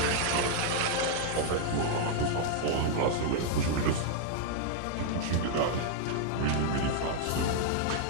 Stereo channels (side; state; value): both; different; correlation -0.01